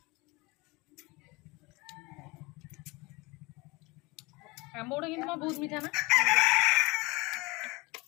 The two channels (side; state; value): right; quieter; 24.7 dB